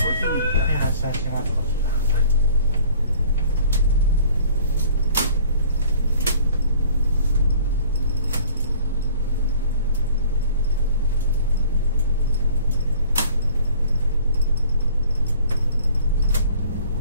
発車します。こちら。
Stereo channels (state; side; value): inverted; both; correlation -0.52